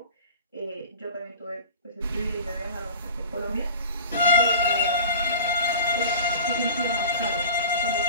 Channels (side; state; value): both; inverted; correlation -0.38